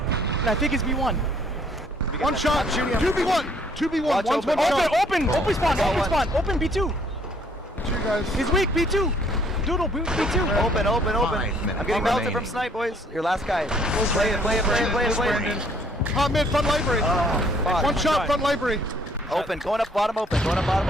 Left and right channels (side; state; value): both; normal; correlation 0.62